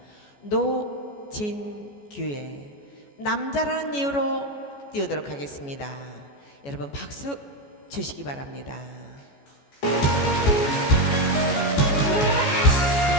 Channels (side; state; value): right; late; 14 ms